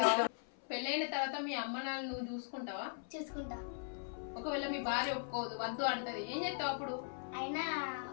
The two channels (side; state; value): right; silent; 51 dB below the other